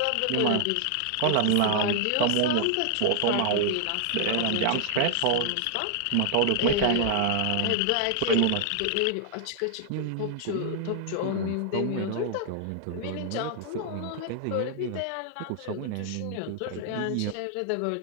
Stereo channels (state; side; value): different; both; correlation 0.00